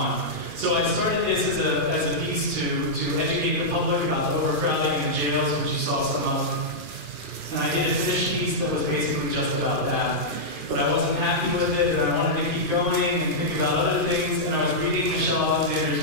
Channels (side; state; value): left; late; 2.4 ms